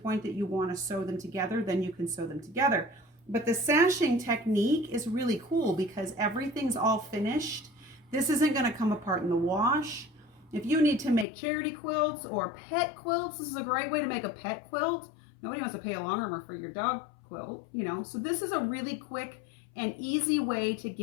that you want to sew them together, then you can sew them together. But the sashing technique is really cool because everything's all finished. This isn't going to come apart in the wash. If you need to make charity quilts or pet quilts, this is a great way to make a pet quilt. Nobody wants to pay a long armor for your dog quilt, you know. So this is a really quick and easy way to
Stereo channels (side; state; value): right; drops out; at 11.2 s